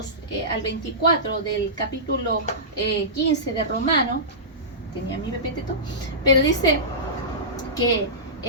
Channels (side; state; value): both; normal; correlation -0.18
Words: al 24 del capítulo 15 de Romanos, tenía mi pepeteto, pero dice que